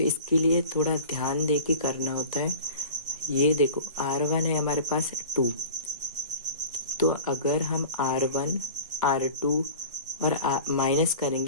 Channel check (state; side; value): inverted; both; correlation -0.38